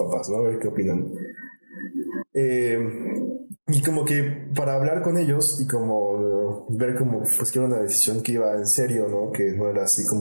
¿no? A ver qué opinan. Y como que para hablar con ellos y como ver como pues que era una decisión que iba en serio, ¿no? Que no era así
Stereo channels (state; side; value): inverted; both; correlation -1.00